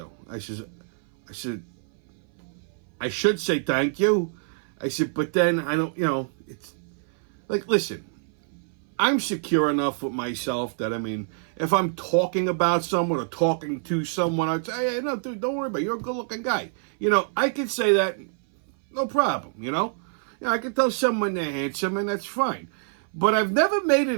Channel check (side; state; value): left; silent; 58 dB below the other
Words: I said, I should say thank you. I said, but then I don't, it's like, listen, I'm secure enough with myself that, if I'm talking about someone or talking to someone, I'd say, hey, no, dude, don't worry about it. You're a good-looking guy. I could say that, no problem, I can tell someone they're handsome, and that's fine. But I've never made